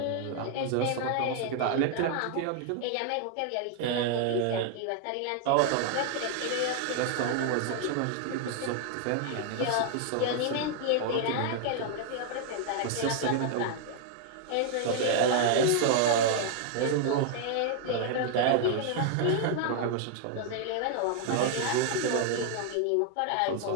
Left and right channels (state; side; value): different; both; correlation 0.00